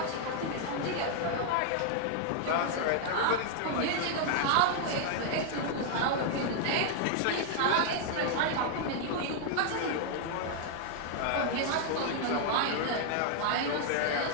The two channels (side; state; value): both; different; correlation 0.00